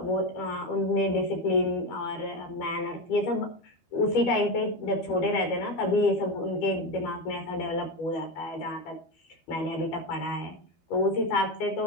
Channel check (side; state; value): right; late; 13 ms